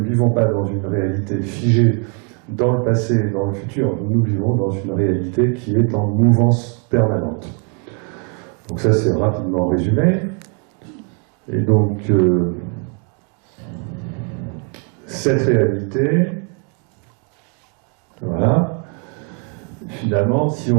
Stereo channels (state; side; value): quieter; left; 38.5 dB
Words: vivons pas dans une réalité figée dans le passé et dans le futur. Nous vivons dans une réalité qui est en mouvance permanente. Donc ça, c'est rapidement résumé. Et donc, cette réalité, voilà, finalement, si